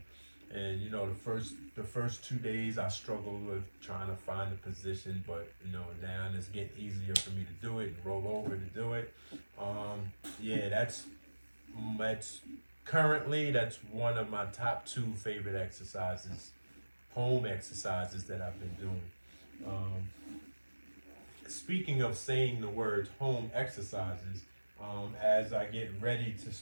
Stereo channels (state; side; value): inverted; both; correlation -1.00